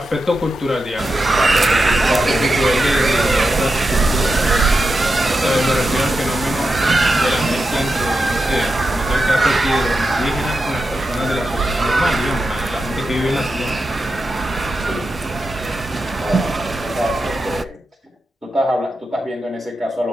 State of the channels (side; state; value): both; normal; correlation 0.89